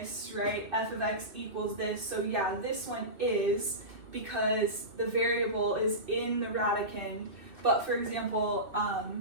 right? F of x equals this. So yeah, this one is because the variable is in the radicand. But for example,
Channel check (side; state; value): left; late; 2.6 ms